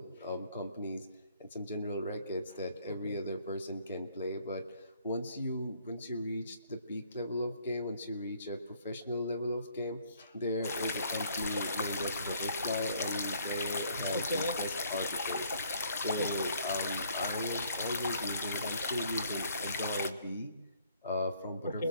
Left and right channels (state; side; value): inverted; both; correlation -0.62